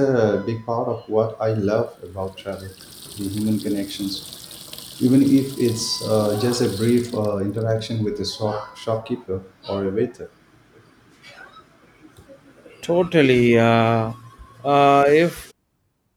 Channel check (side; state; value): both; identical; correlation 1.00